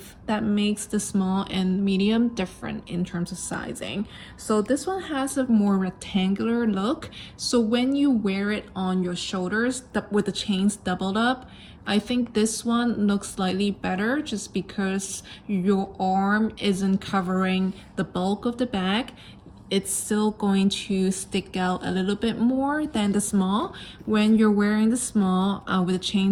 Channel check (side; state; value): both; identical; correlation 1.00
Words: that makes the small and medium different in terms of sizing. So this one has a more rectangular look. So when you wear it on your shoulders with the chains doubled up, I think this one looks slightly better just because your arm isn't covering the bulk of the bag. It's still going to stick out a little bit more than the small. When you're wearing the small with the